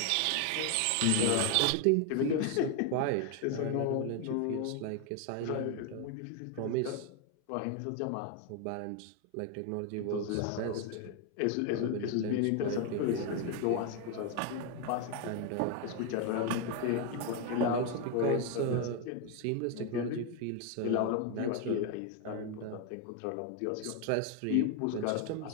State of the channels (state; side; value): different; both; correlation 0.01